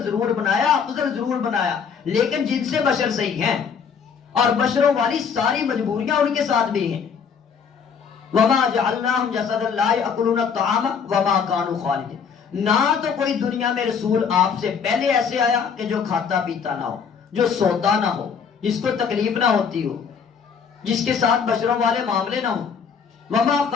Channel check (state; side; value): quieter; right; 6.5 dB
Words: ضرور بنایا، افضل ضرور بنایا، لیکن جن سے بشر صحیح ہیں اور بشروں والی ساری مجبوریاں ان کے ساتھ بھی ہیں۔ وما جعلناہم جسدا لا یأکلون الطعام وما كانوا خالدین۔ نہ تو کوئی دنیا میں رسول آپ سے پہلے ایسے آیا کہ جو کھاتا پیتا نہ ہو، جو سوتا نہ ہو، جس کو تکلیف نہ ہوتی ہو، جس کے ساتھ بشروں والے معاملے نہ ہوں۔ وما